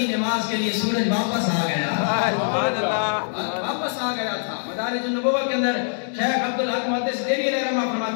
نماز کے لیے سورج واپس آ گیا، واپس آ گیا تھا۔ مدارج النبوہ کے اندر شیخ عبدالحق محدث دہلوی علیہ رحمہ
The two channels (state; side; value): silent; right; digital silence